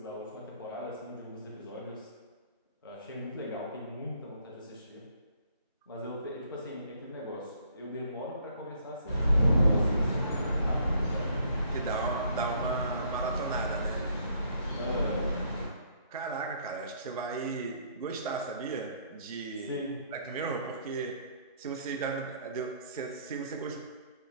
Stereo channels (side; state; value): both; inverted; correlation -0.64